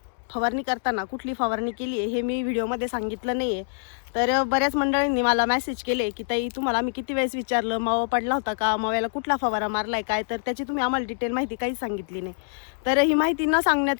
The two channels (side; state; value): right; silent; digital silence